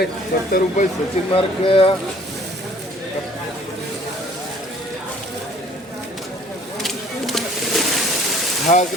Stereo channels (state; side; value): normal; both; correlation 0.55